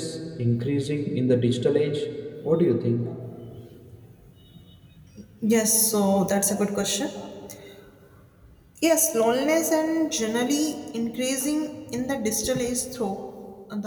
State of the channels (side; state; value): both; identical; correlation 1.00